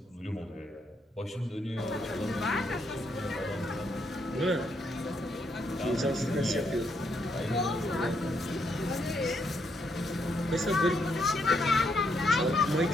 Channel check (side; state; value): both; normal; correlation 0.76